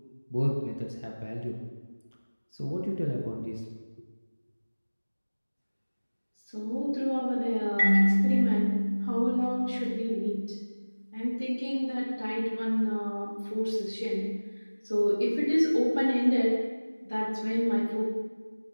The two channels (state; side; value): inverted; both; correlation -1.00